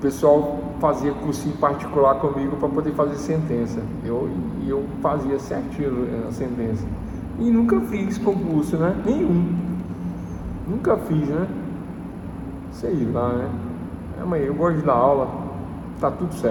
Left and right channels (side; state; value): both; identical; correlation 1.00